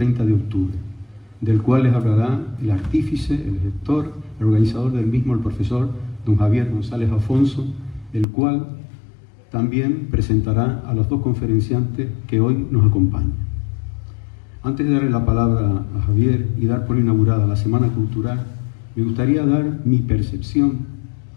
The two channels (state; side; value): drops out; right; at 8.2 s